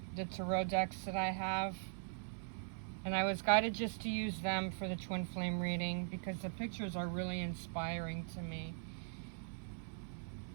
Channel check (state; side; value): silent; left; 50 dB below the other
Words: the tarot decks that I have, and I was guided just to use them for the Twin Flame reading because the pictures are really inspiring to me.